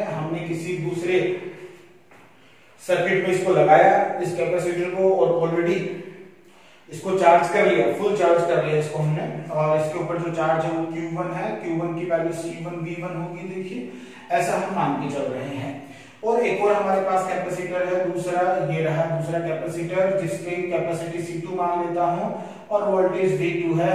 हमने किसी दूसरे सर्किट में इसको लगाया इस कैपेसिटर को और ऑलरेडी इसको चार्ज कर लिया, फुल चार्ज कर लिया इसको हमने, और इसके ऊपर जो चार्ज है वो Q1 है, Q1 की वैल्यू C1 V1 होगी। देखिए ऐसा हम मान के चल रहे हैं। और एक और हमारे पास कैपेसिटर है दूसरा, ये रहा दूसरा कैपेसिटर जिसकी कैपेसिटी C2 मान लेता हूं और वोल्टेज V2 है।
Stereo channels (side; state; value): both; identical; correlation 1.00